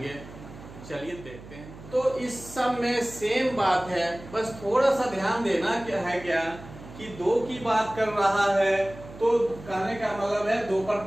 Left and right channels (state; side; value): noise; right; hum, 16 dB below the sound